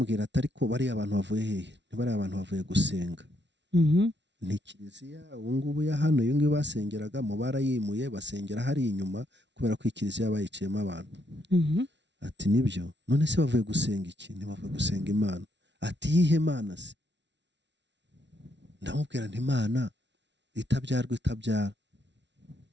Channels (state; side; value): late; left; 0.51 ms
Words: ati ariko bari abantu bavuye hehe ntibari abantu bavuye gusenga ni Kiliziya ubu ngubu ya hano iyo ngiyo basengeraga mu barayimuye basengera hari inyuma kubera ko Kiliziya bayiciyemo abantu ati nibyo none se bavuye gusenga iki ntibavuye gusenga Imana ati yihe Mana se ndamubwira nti Imana itabyarwa itabyara